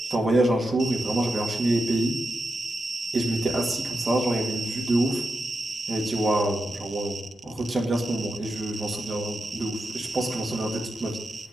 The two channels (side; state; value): both; normal; correlation 0.88